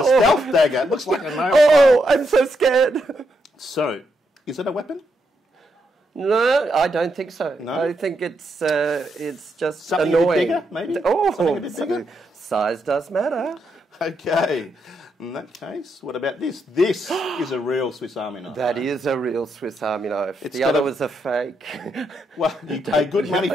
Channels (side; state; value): both; normal; correlation 0.80